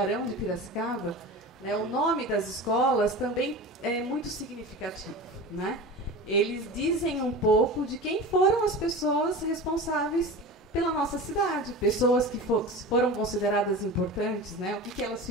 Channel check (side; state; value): both; normal; correlation 0.32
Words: de Piracicaba, né, o nome das escolas também é muito significativo, né? Eles dizem um pouco de quem foram as pessoas responsáveis pela nossa cidade, pessoas que foram consideradas importantes, né? O que elas